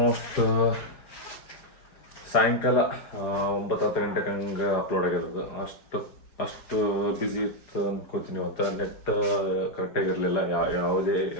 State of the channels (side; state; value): right; late; 4.8 ms